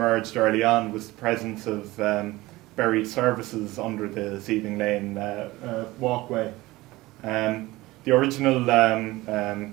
early on was the presence of buried services under the CEng Lane walkway. The original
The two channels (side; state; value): left; quieter; 19.3 dB